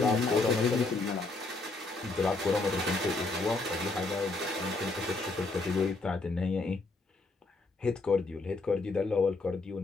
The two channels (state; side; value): quieter; right; 3.4 dB